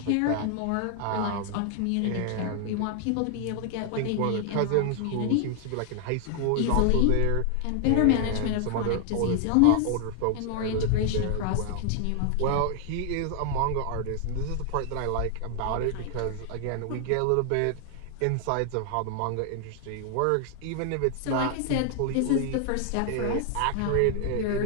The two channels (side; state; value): both; different; correlation 0.00